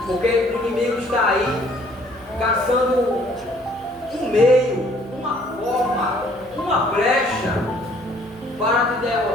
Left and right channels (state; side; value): noise; right; hum, 25 dB below the sound